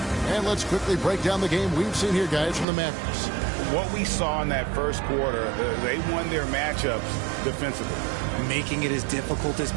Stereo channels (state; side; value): drops out; left; at 2.7 s